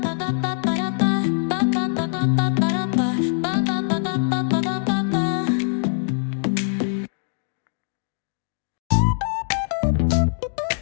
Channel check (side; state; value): right; silent; digital silence